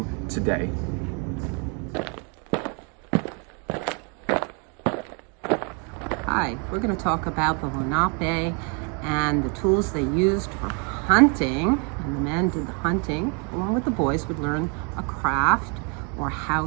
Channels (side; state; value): left; quieter; 36.1 dB